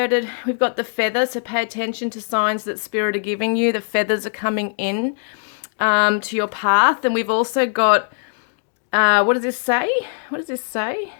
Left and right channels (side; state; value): right; silent; digital silence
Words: We've got the feather, so pay attention to signs that spirit are giving you. The feathers are coming in to your path. And we've also got, what does this say? What does this say?